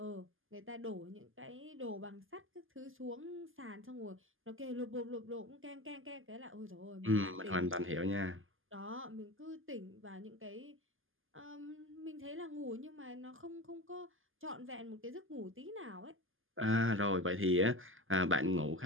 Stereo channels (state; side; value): late; left; 0.59 ms